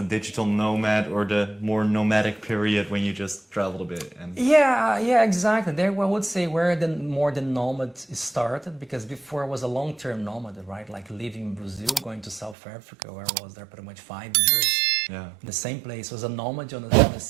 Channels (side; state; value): left; drops out; at 12.6 s